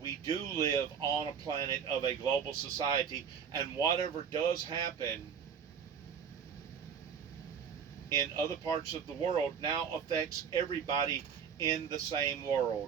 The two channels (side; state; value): left; quieter; 7.2 dB